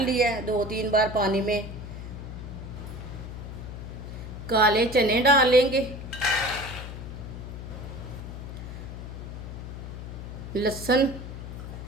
लिया है 2-3 बार पानी में। काले चने डाल लेंगे। लहसुन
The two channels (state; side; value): noise; left; hum, 9 dB below the sound